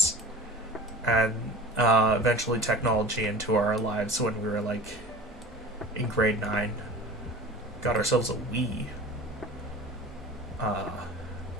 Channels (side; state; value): both; normal; correlation 0.38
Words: and eventually technology into our lives when we were like in grade 9. Got ourselves a Wii.